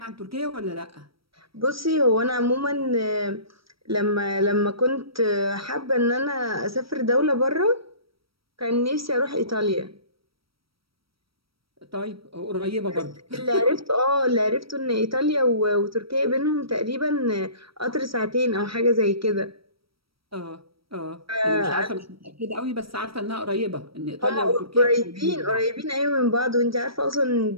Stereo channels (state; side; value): late; left; 0.75 ms